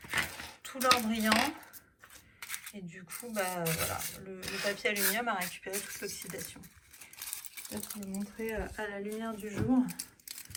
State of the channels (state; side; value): identical; both; correlation 1.00